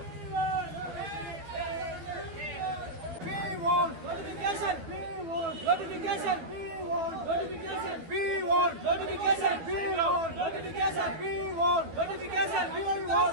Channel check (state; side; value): late; left; 12 ms